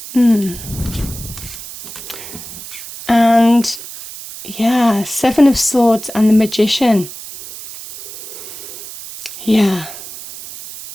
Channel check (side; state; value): right; noise; hiss, 13 dB below the sound